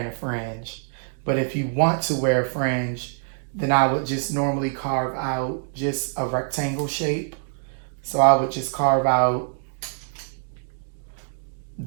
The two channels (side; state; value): left; silent; digital silence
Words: a fringe. But if you want to wear a fringe, then I would just normally carve out just a rectangle shape. So I would just carve out